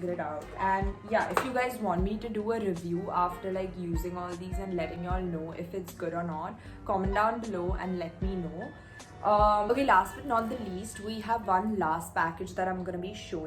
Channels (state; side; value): identical; both; correlation 1.00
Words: it out. And yeah, if you guys want me to do a review after like using all these and letting y'all know if it's good or not, comment down below and let me know. Okay, last but not the least, we have one last package that I'm gonna be